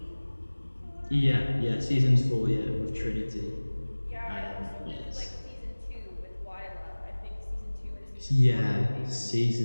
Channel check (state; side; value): inverted; both; correlation -1.00